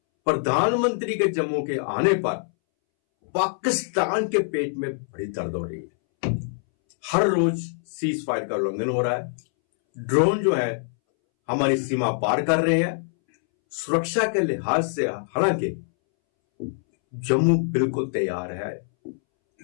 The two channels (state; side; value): silent; right; 62 dB below the other